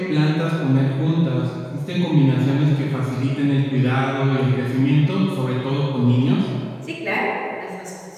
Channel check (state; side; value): identical; both; correlation 1.00